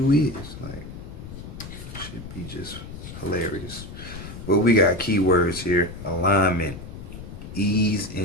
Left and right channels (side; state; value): left; noise; rumble, 12 dB below the sound